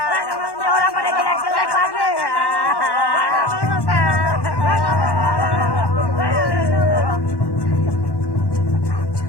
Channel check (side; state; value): right; late; 1.1 ms